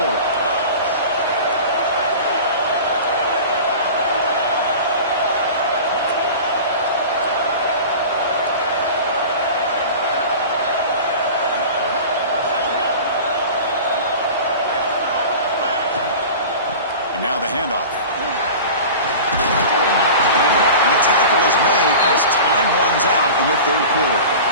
And now the handoff. And the tackle is made as time runs out in the 3rd quarter.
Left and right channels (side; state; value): both; inverted; correlation -0.36